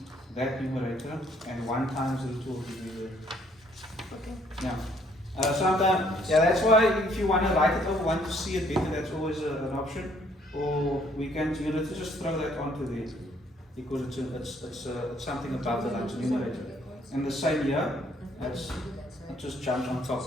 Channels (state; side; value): normal; both; correlation 0.65